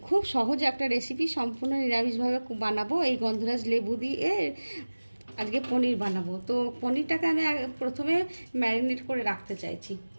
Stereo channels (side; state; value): both; inverted; correlation -1.00